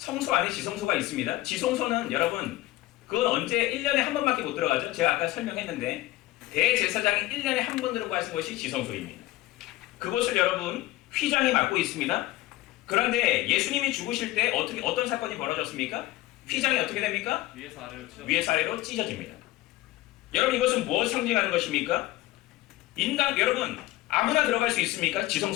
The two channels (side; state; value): right; quieter; 17.5 dB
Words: 안에 지성소가 있습니다. 지성소는 여러분 그건 언제 1년에 한 번밖에 못 들어가죠? 제가 아까 설명했는데 대제사장이 1년에 한 번 들어가는 것이 지성소입니다. 그것을 여러분 휘장이 맡고 있습니다. 그런데 예수님이 죽으실 때 어떤 사건이 벌어졌습니까? 휘장이 어떻게 됩니까? 위에서 아래로 찢어집니다. 여러분 이것은 무엇을 상징하는 것입니까? 여러분 아무나 들어갈 수 있습니까?